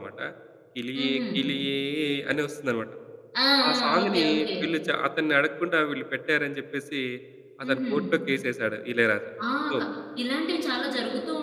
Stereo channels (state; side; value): identical; both; correlation 1.00